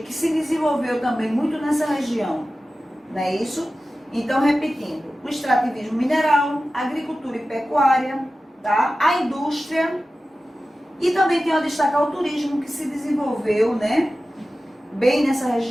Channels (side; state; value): both; normal; correlation 0.95